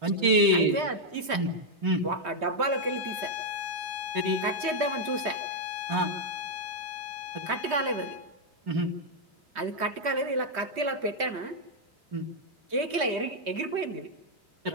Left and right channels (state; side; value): late; left; 3.2 ms